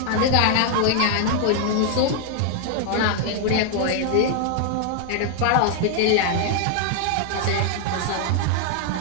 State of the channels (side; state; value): both; different; correlation 0.00